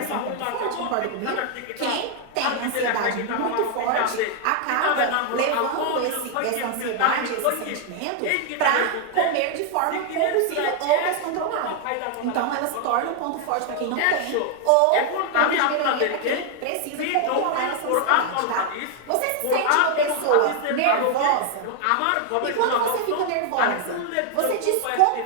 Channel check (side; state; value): both; different; correlation 0.00